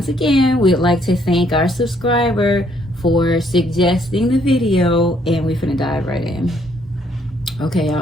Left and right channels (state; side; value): normal; both; correlation 0.68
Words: again, we'd like to thank our subscriber for suggesting the video, and we're finna dive right in. Okay,